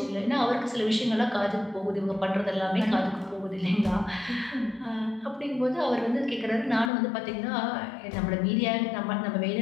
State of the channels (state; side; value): drops out; right; at 6.9 s